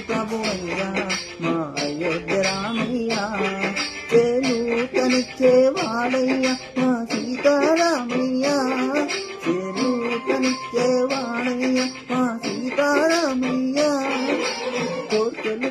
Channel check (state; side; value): identical; both; correlation 1.00